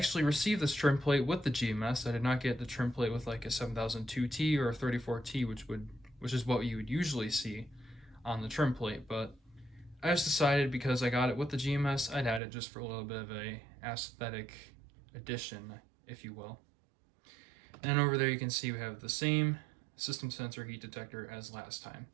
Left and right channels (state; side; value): drops out; left; at 12.4 s